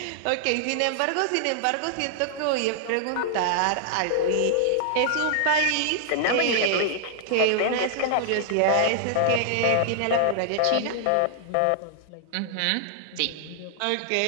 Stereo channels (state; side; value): different; both; correlation -0.01